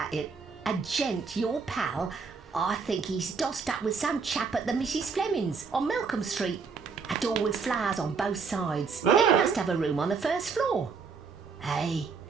it. A gent, your pal. I think he's dossed up with some chap at the Mrs. Fleming's on Malcolm Street. A door with flowers on both sides. He must have a room on the first floor. Hey,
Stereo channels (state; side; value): quieter; left; 5.2 dB